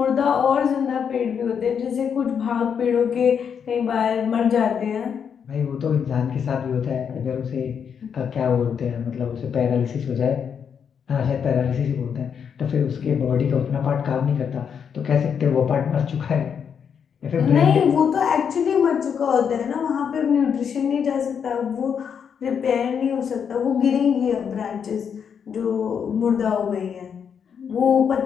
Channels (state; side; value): quieter; right; 7.3 dB